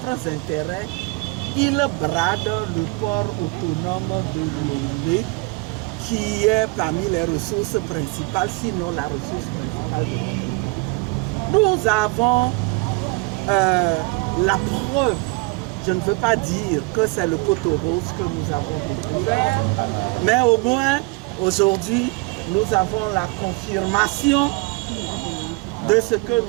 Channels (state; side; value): quieter; left; 26.5 dB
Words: intérêts, il brade le port autonome de Lomé, qui est parmi les ressources principales, sinon la ressource principale de notre pays. Nous avons la preuve, je ne veux pas dire que c'est le poteau rose que nous avons découvert, mais au moins aujourd'hui, nous avons la confirmation de ce que